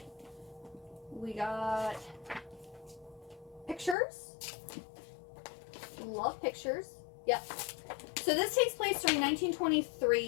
We got pictures. Love pictures. Yep. So this takes place during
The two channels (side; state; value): right; drops out; at 4.0 s